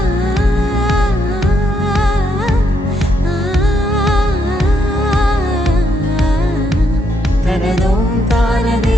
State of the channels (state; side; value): normal; both; correlation 0.76